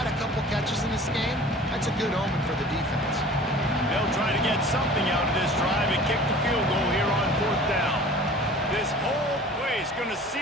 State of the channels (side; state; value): both; normal; correlation 0.44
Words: a couple catches in this game, that's a good omen for the defense. They'll try to get something out of this drive and kick the field goal here on 4th down. This whole place going to see